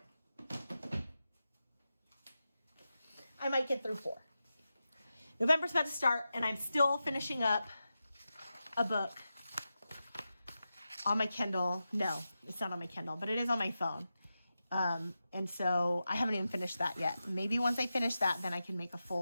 I might get through 4. November's about to start, and I'm still finishing up a book on my Kindle. No, it's not on my Kindle, but it is on my phone. And so I haven't even finished that yet. Maybe once I finish that, then I can make a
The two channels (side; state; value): both; inverted; correlation -0.91